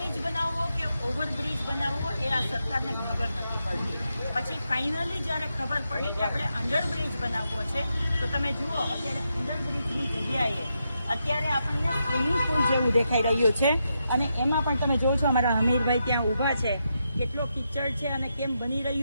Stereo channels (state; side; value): inverted; both; correlation -0.84